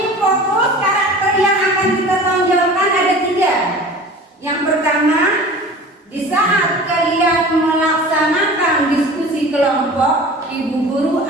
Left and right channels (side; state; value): both; normal; correlation 0.40